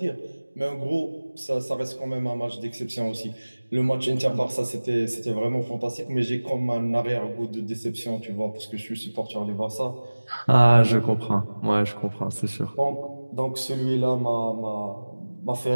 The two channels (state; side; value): inverted; both; correlation -1.00